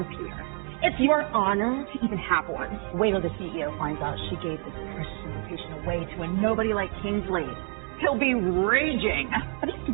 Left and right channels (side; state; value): left; quieter; 39.3 dB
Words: pure. It's your honor to even have one. Wait till the CEO finds out she gave this precious invitation away to a nobody like Kingsley. He'll be raging. But it's